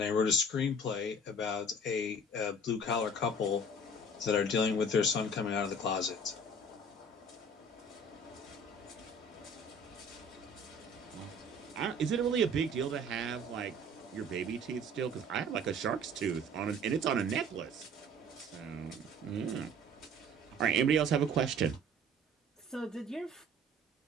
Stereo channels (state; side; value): normal; both; correlation 0.48